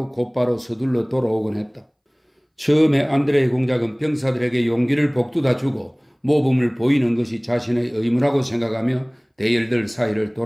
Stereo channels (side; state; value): both; identical; correlation 1.00